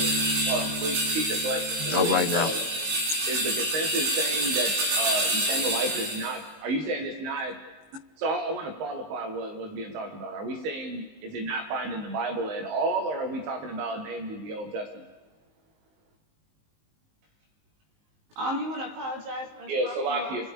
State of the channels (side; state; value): left; late; 19 ms